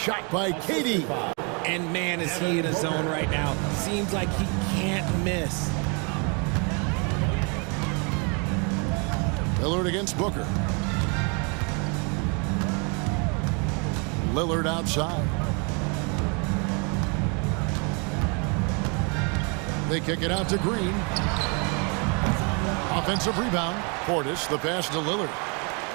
by KD. And man, is he in a zone right now. Seems like he can't miss. Lillard against Booker. Lillard outside. They kick it out to Green. Offensive rebound. Portis, the pass to Lillard.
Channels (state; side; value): quieter; left; 34.2 dB